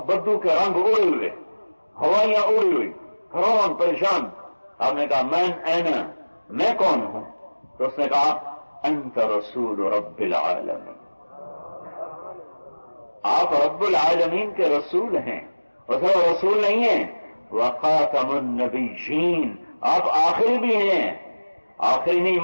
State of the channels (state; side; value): inverted; both; correlation -1.00